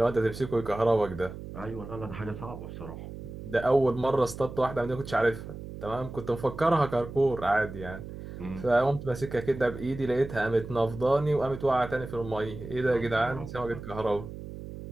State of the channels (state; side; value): noise; right; hum, 11 dB below the sound